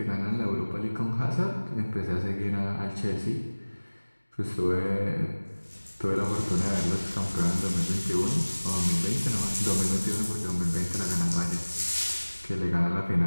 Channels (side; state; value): both; inverted; correlation -1.00